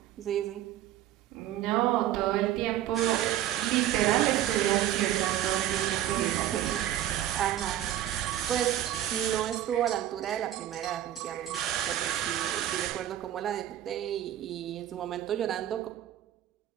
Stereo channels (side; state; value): left; quieter; 12.4 dB